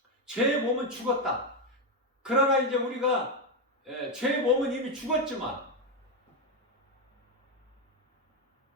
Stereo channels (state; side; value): normal; both; correlation 0.07